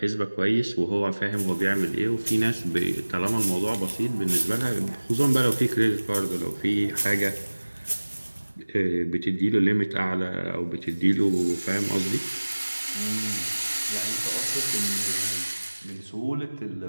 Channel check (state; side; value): inverted; both; correlation -1.00